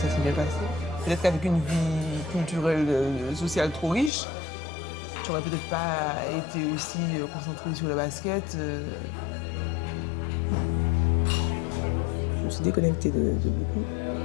s'est bien passé. Peut-être qu'avec une vie culturelle, sociale trop riche, j'aurais peut-être pas été aussi concentrée sur le basket. Je me suis déconnectée de beaucoup.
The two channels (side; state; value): right; drops out; at 4.1 s